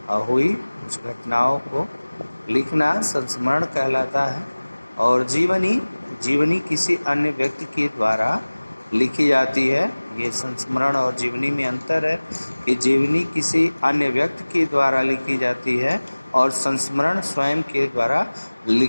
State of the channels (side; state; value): both; inverted; correlation -1.00